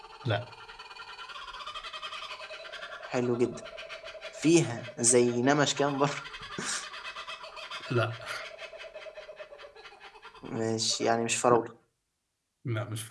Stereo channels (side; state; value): both; identical; correlation 1.00